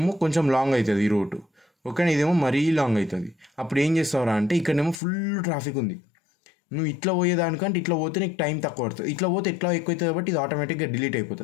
కొంచెం లాంగ్ అవుతుంది ఈ రూటు. ఓకేనా, ఇదేమో మరీ లాంగ్ అవుతుంది. అప్పుడు ఏం చేస్తావురా అంటే, ఇక్కడేమో ఫుల్ ట్రాఫిక్ ఉంది, నువ్వు ఇట్లా పోయేదానికంటే ఇట్లా పోతే నీకు టైం తక్కువ పడుతుంది, ఇట్లా పోతే ఎట్లా ఎక్కువ అవుతుంది కాబట్టి ఇది ఆటోమేటిక్గా డిలీట్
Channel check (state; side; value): drops out; right; at 5.0 s